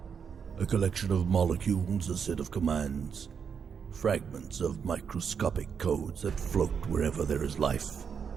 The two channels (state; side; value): quieter; left; 6.8 dB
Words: A collection of molecules, a set of commands, fragments of microscopic codes that float wherever there is life,